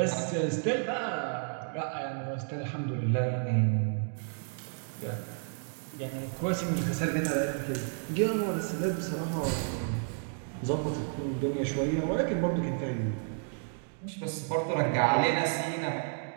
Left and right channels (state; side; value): silent; left; 57 dB below the other